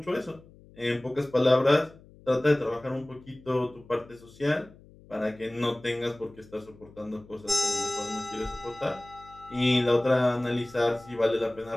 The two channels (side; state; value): left; noise; hum, 24 dB below the sound